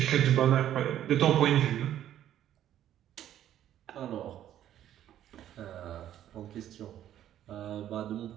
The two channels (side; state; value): left; quieter; 11.5 dB